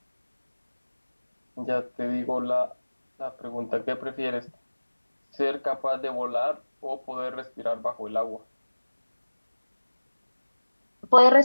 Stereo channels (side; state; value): both; inverted; correlation -1.00